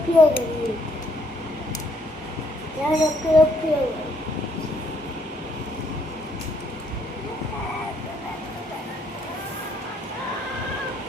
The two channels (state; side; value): normal; both; correlation 0.69